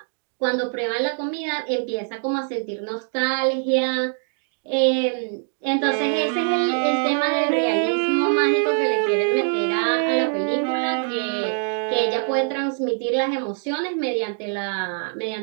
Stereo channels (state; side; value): silent; left; 57 dB below the other